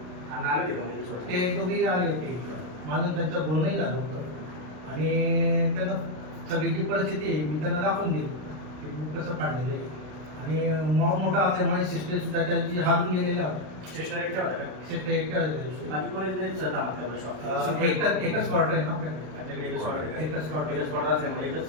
ते दोघेही आले होते, माझं त्यांचं बोलणंही झालं होतं, आणि त्यांना सगळी जी परिस्थिती आहे मी त्यांना दाखवून दिली की बुक कसं काढलेलं आहे. आणि मॉब मोठा असल्यामुळे सिस्टर सुद्धा त्याची हारून गेलेल्या होत्या. सिस्टर एकट्या होत्या का? सिस्टर एकट्या होत्या. बाकी कोणी एकच क्वार्टर आहे ना आपल्याकडे, एकच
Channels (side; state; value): left; late; 33 ms